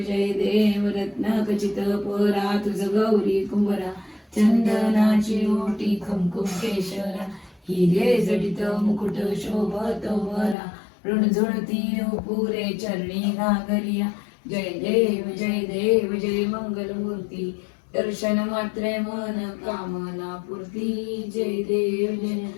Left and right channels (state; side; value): drops out; right; at 10.6 s